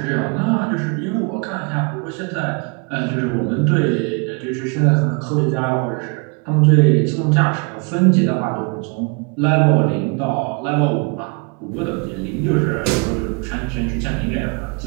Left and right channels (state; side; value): quieter; left; 34.2 dB